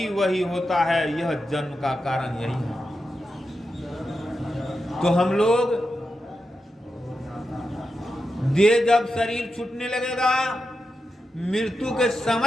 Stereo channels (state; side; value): normal; both; correlation 0.89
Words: वही होता है। यह जन्म का कारण यही है। तो हम लोग देह जब शरीर छूटने लगेगा, मृत्यु के